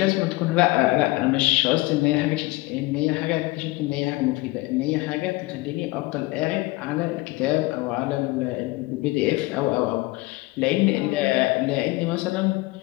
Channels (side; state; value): right; quieter; 21.4 dB